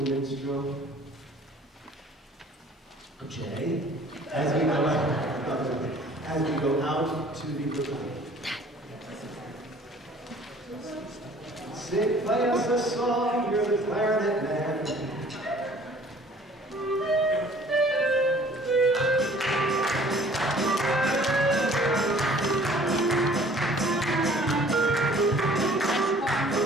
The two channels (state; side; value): normal; both; correlation 0.53